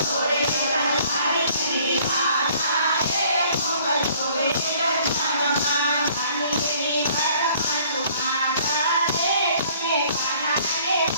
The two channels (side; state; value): both; inverted; correlation -0.57